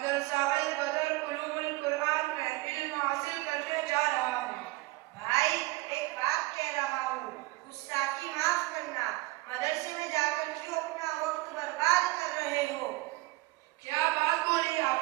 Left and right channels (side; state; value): left; quieter; 20.7 dB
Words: البدر علوم القرآن میں علم حاصل کرنے جا رہا ہوں۔ بھائی ایک بات کہہ رہا ہوں، گستاخی معاف کرنا، مدرسے میں جا کر کیوں اپنا وقت برباد کر رہے ہو؟ کیا بات بولی